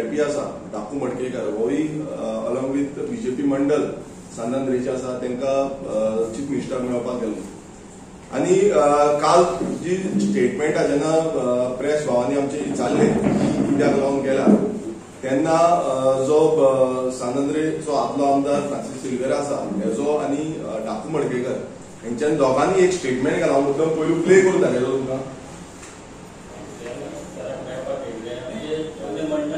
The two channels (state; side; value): identical; both; correlation 1.00